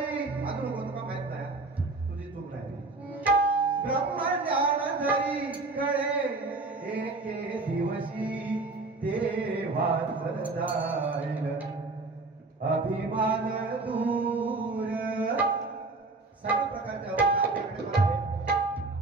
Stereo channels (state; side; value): quieter; left; 3.5 dB